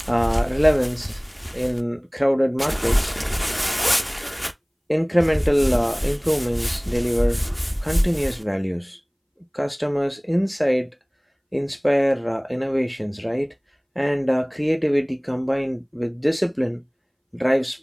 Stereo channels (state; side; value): identical; both; correlation 1.00